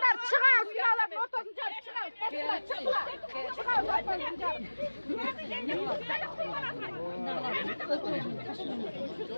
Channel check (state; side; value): inverted; both; correlation -1.00